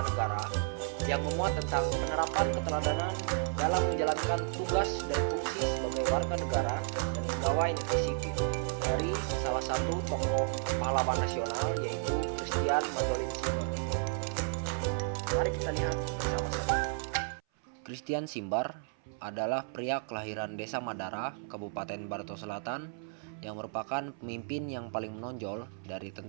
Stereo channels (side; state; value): left; silent; 56 dB below the other